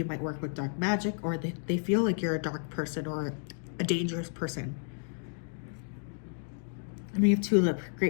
might work with dark magic, or they feel like you're a dark person or a dangerous person. And we have tulip,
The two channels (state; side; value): silent; right; 57 dB below the other